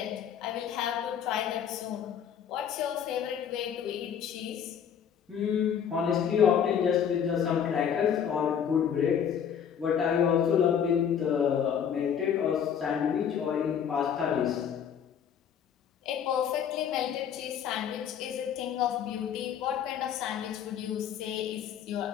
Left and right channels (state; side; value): quieter; right; 8.4 dB